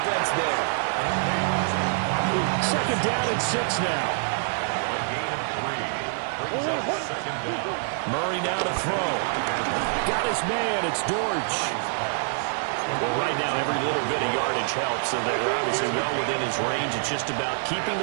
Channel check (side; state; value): left; silent; digital silence